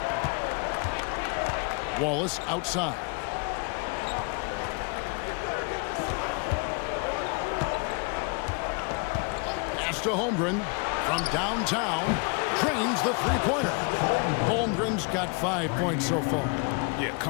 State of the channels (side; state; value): right; quieter; 33.2 dB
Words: Wallace outside. Pass to Holmgren from downtown. Drains the three-pointer. Holmgren's got 5 points so far. Yeah,